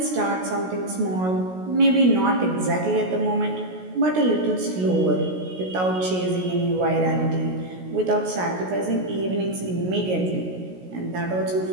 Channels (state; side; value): late; left; 16 ms